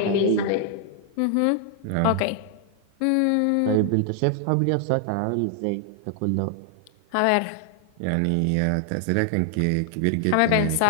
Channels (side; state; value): both; different; correlation 0.00